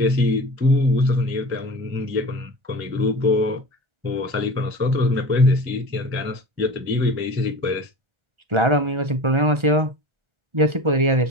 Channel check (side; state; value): left; late; 1.4 ms